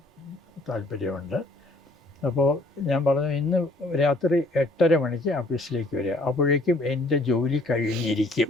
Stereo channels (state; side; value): normal; both; correlation 0.59